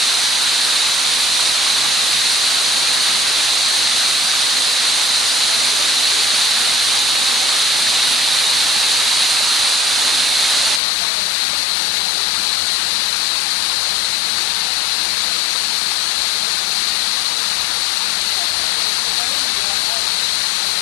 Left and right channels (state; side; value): drops out; right; at 10.8 s